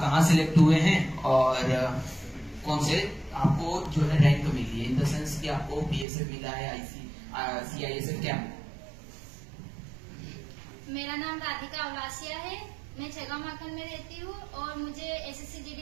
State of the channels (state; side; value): drops out; left; at 6.1 s